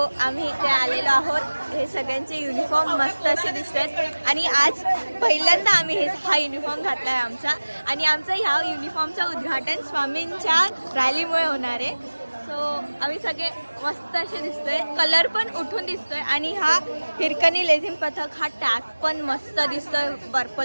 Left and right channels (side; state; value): both; inverted; correlation -1.00